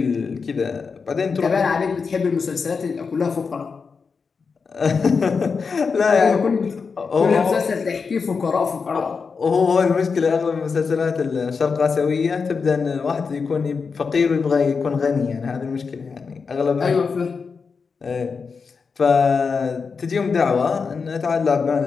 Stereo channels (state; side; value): quieter; right; 5.2 dB